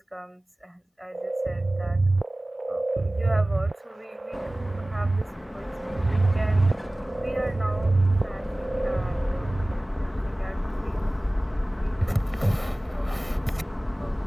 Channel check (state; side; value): normal; both; correlation 0.98